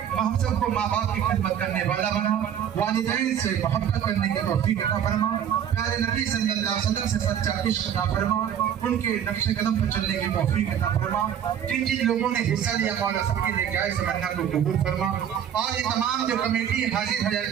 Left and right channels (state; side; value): quieter; left; 9.3 dB